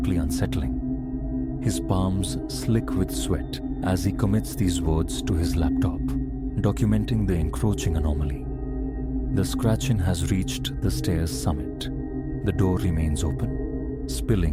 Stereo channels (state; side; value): identical; both; correlation 1.00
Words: unsettling. His palms slick with sweat as he commits these words to his laptop, documenting the encroaching anomaly. The scratching has reached the stairs' summit. The door remains open,